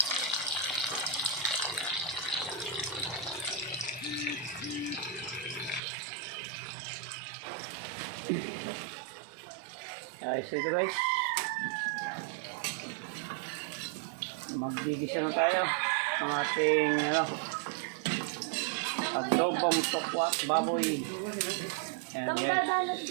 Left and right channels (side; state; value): left; drops out; at 5.8 s